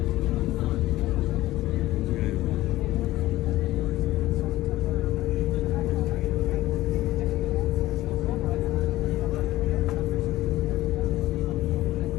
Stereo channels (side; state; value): right; quieter; 16.4 dB